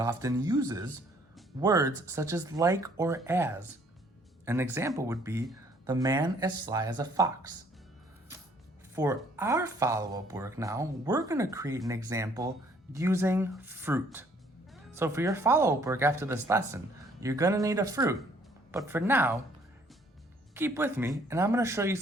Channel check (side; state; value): both; normal; correlation 0.62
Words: uses words such as like or as. An example would be the man as sly as a fox. For our follow-up work now, we're going to create an example using fruit. So for your follow-up work after this lesson, you're going to need a fruit. But for now, keep with me and I'm going to show you